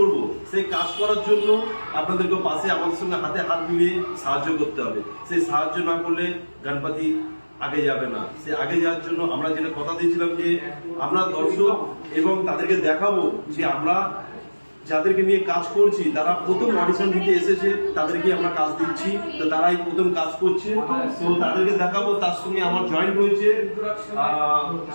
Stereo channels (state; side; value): inverted; both; correlation -1.00